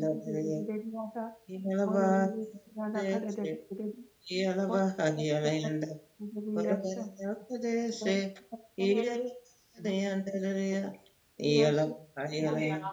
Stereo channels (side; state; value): both; identical; correlation 1.00